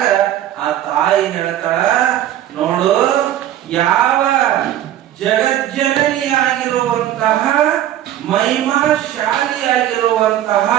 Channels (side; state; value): left; quieter; 12.2 dB